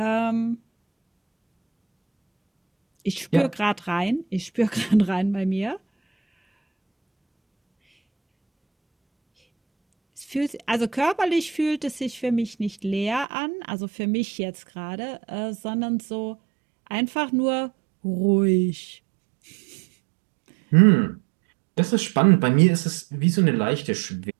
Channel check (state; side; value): drops out; left; at 13.2 s